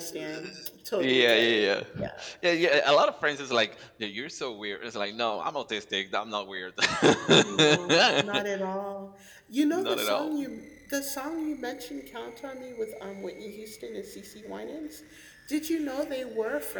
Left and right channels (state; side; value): identical; both; correlation 1.00